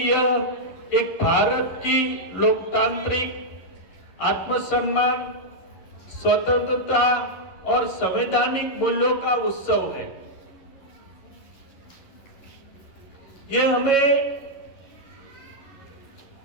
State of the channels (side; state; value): right; late; 11 ms